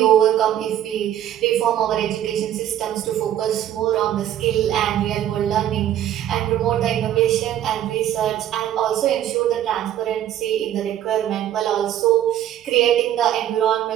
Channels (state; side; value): quieter; left; 11.5 dB